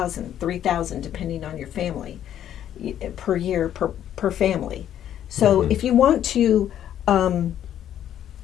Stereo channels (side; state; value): right; quieter; 10.7 dB